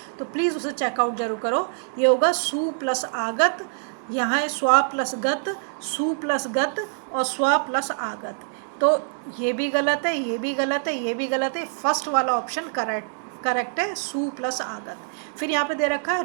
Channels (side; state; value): left; silent; digital silence